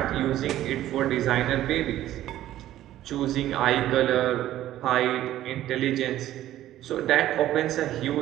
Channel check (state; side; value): quieter; left; 13.5 dB